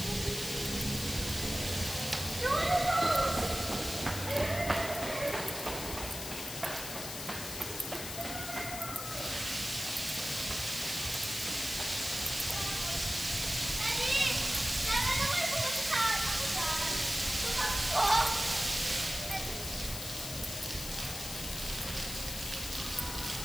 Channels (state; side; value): noise; left; hiss, 7 dB below the sound